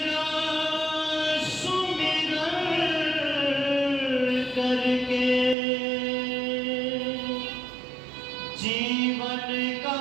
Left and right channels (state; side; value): drops out; left; at 5.6 s